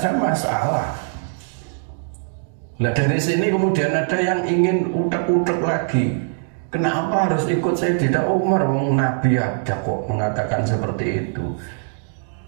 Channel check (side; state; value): left; silent; digital silence